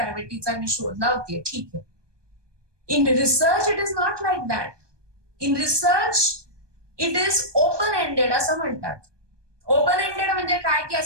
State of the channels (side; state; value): left; late; 1.2 ms